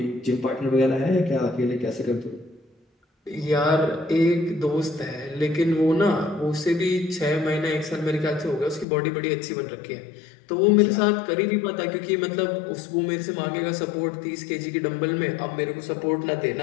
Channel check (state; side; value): drops out; right; at 8.8 s